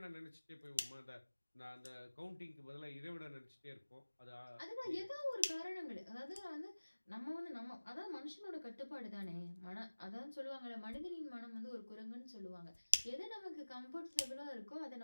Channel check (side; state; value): both; inverted; correlation -1.00